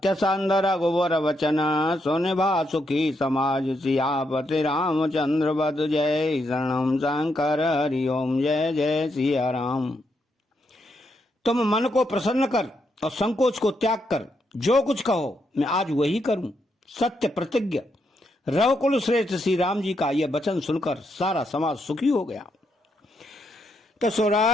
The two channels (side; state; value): both; normal; correlation 0.80